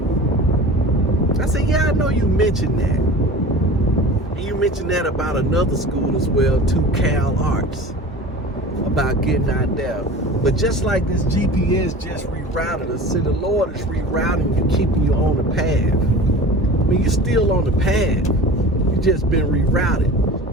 I said, yeah, I know you mentioned that. And you mentioned that about another school as well, too, Cal Arts, about getting out there. But just like this GPS just rerouted us, see, the Lord is rerouting you, keeping you on the path. I mean, you're still on the path. You just been rerouted.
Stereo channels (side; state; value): both; normal; correlation 0.37